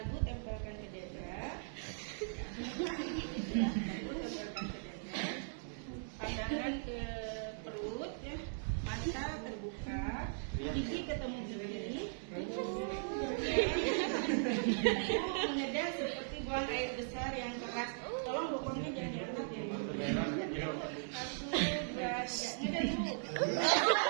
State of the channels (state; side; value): silent; left; digital silence